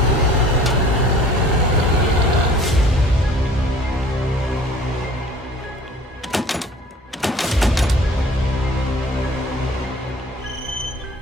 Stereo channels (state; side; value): normal; both; correlation 0.49